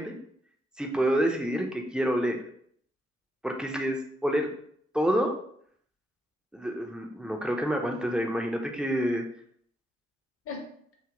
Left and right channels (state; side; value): normal; both; correlation 0.81